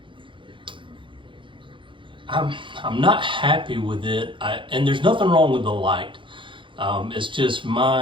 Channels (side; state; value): left; late; 0.24 ms